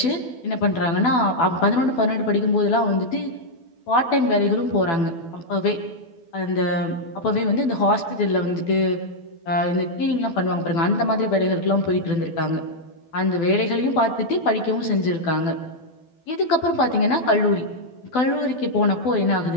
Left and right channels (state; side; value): late; right; 12 ms